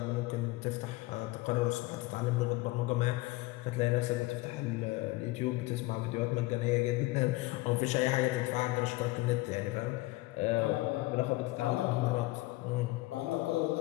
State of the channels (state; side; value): quieter; right; 20.3 dB